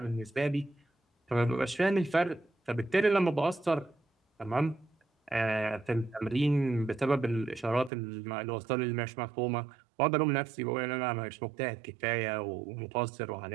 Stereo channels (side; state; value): left; drops out; at 7.9 s